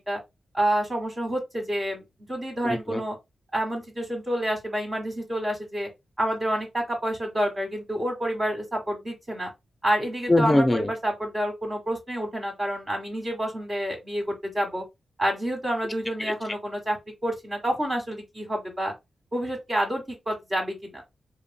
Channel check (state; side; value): normal; both; correlation 0.93